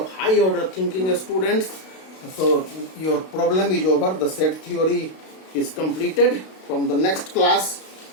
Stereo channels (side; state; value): right; late; 32 ms